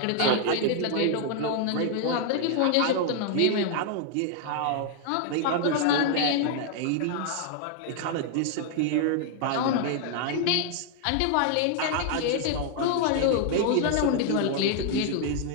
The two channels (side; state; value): both; different; correlation 0.00